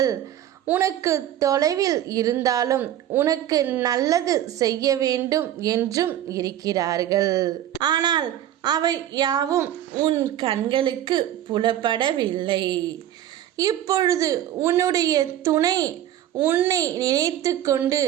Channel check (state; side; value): quieter; left; 11.8 dB